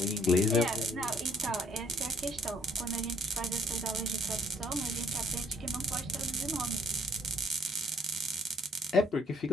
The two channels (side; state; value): both; normal; correlation 0.65